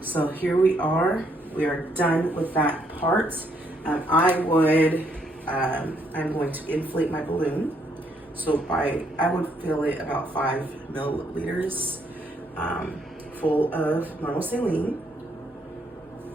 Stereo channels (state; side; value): normal; both; correlation 0.72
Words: so here we are. We are done with that part. I'm going to inflate my balloon. So I would fill it about 5 milliliters full of normal saline.